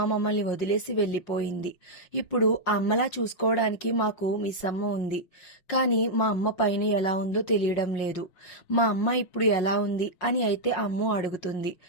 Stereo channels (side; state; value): right; late; 5.5 ms